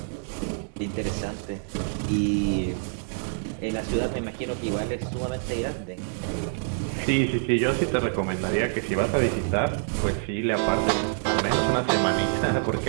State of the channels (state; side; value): silent; left; digital silence